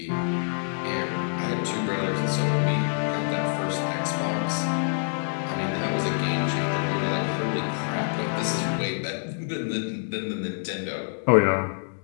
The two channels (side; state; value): right; silent; digital silence